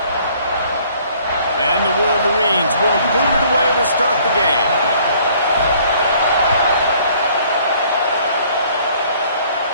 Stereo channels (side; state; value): both; inverted; correlation -0.59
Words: And the Wolverines will boot it away to start the game.